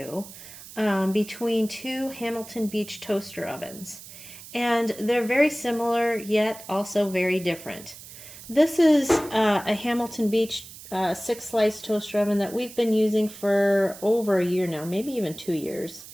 between two Hamilton Beach toaster ovens. And they're very similar, yet also very different. This is a Hamilton Beach 6-slice toaster oven that we've been using for over a year now, maybe even 2 years.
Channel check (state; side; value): noise; right; hiss, 16 dB below the sound